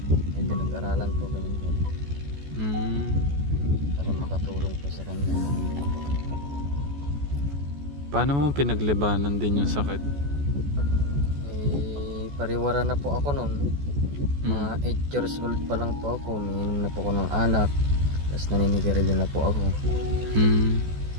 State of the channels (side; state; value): left; late; 14 ms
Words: may pinag-aralan po, ganun po. Para makatulong po sa kanya. Paano mo pinaglabanan din yung sakit? Pariwara na po ako noon. Mga 8 years old pa lang po ako. Umiinom na po ako ng alak. Tapos naninigarilyo na po ako.